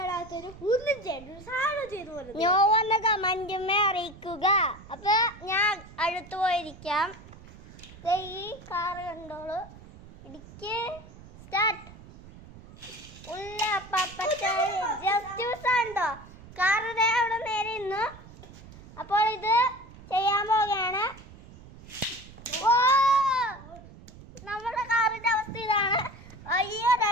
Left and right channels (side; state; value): right; noise; rumble, 19 dB below the sound